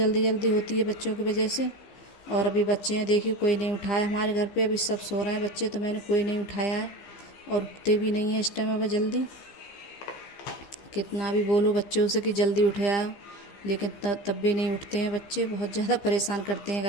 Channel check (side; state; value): right; late; 15 ms